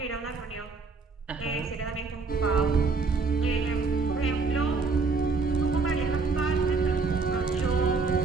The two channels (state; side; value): quieter; left; 4.4 dB